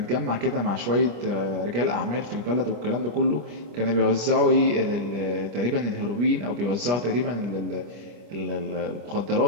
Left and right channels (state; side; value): late; left; 25 ms